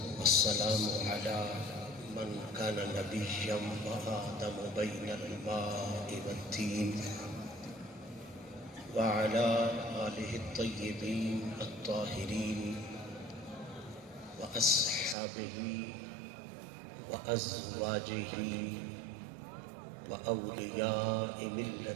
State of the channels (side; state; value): left; drops out; at 15.2 s